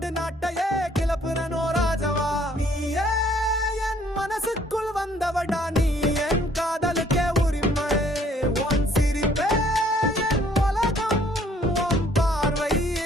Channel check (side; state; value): both; normal; correlation 0.61